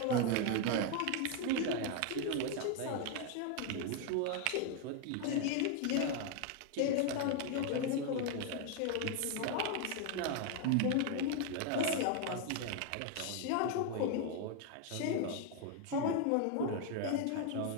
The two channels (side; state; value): both; different; correlation 0.01